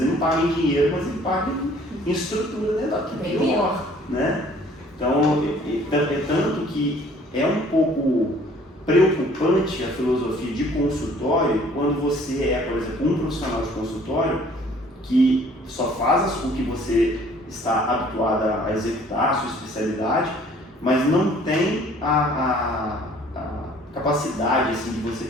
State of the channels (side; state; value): both; normal; correlation 0.56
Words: ele não paga em dinheiro, mas ele paga em estrutura dental, que é pior, né? Então, é tanto que é um pouco preocupante a filosofia de consultório quando você é, por exemplo, um profissional de consultório que só faz o que você está habituado a executar, a sua especialidade, mas não tem a capacidade assim, de você